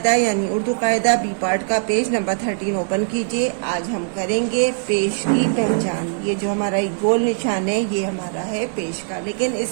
یعنی اردو قاعدہ بی پارٹ کا پیج نمبر 13 اوپن کیجئے۔ آج ہم کریں گے پیش کی پہچان۔ یہ جو ہمارا ایک گول نشان ہے یہ ہمارا ہے پیش کا، لیکن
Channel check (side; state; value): left; silent; 63 dB below the other